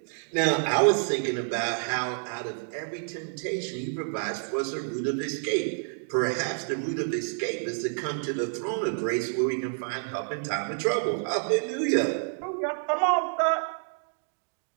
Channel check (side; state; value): left; silent; 59 dB below the other